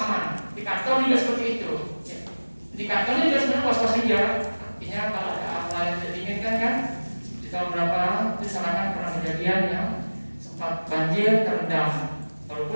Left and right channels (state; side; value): inverted; both; correlation -1.00